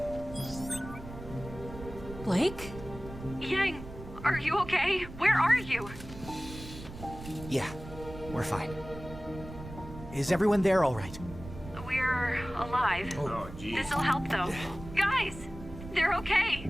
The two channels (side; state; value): right; noise; rumble, 13 dB below the sound